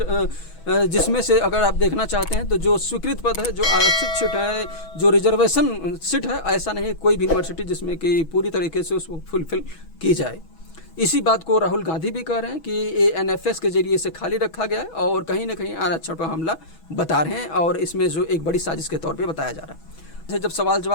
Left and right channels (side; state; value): right; late; 6.2 ms